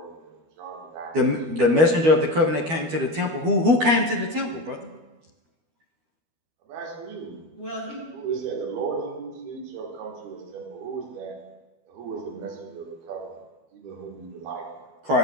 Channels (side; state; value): left; late; 12 ms